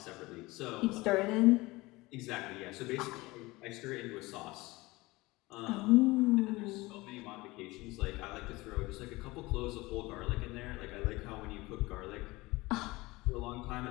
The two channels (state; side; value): quieter; right; 21.4 dB